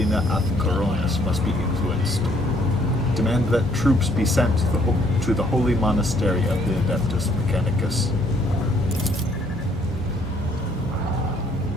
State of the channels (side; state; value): both; normal; correlation 0.65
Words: ab Coronas must be influenced. Demand that troops be sent to the holy monastery of the Adeptus Mechanicus.